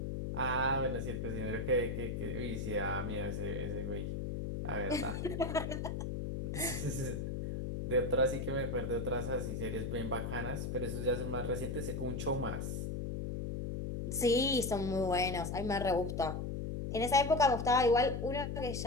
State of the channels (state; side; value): noise; left; hum, 3 dB below the sound